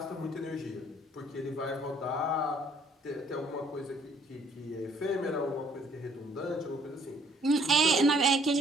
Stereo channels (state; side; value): normal; both; correlation 0.62